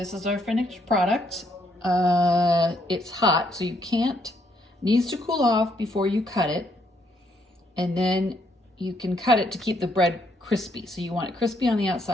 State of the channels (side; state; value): both; normal; correlation 0.72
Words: is our finished product. It's hot, so you can't, needs to cool off before you cut it. And then you can cut it to keep the bread crispy. So you want it crispy on the